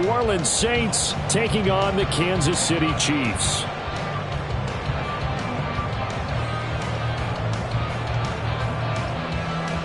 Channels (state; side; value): identical; both; correlation 1.00